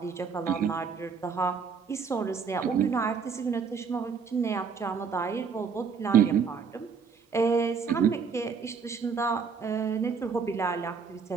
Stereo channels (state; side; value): quieter; left; 5.9 dB